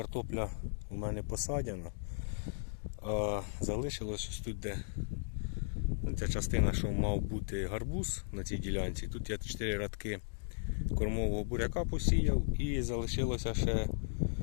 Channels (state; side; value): silent; right; digital silence